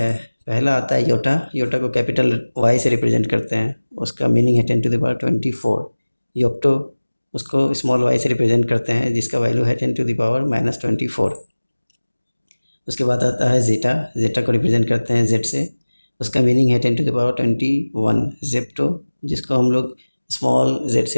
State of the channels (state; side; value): inverted; both; correlation -1.00